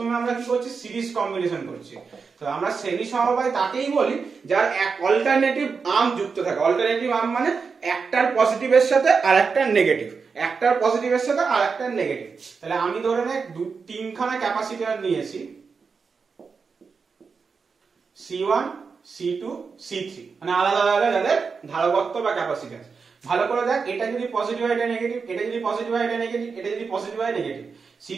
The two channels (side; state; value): left; quieter; 5.2 dB